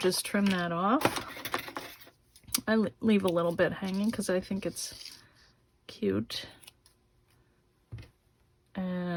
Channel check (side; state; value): both; identical; correlation 1.00